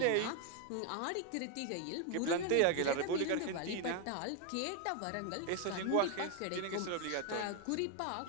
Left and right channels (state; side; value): different; both; correlation 0.01